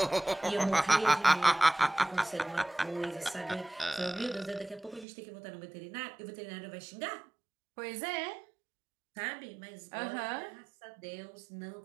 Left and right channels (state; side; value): drops out; left; at 5.1 s